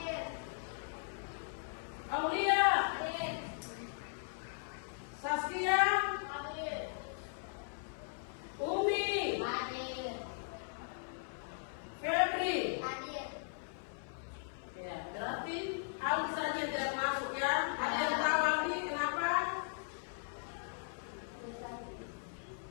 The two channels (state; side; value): silent; right; 52 dB below the other